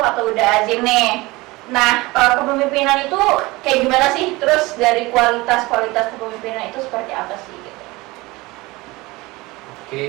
atau Uda Azim nih, nah kepemimpinan itu kayak gimana sih? Terus dari kualitas kepemimpinan itu seperti apa sih? Gitu. Oke,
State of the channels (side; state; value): left; quieter; 21.8 dB